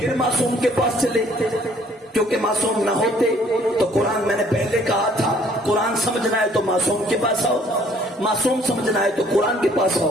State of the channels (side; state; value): both; normal; correlation 0.59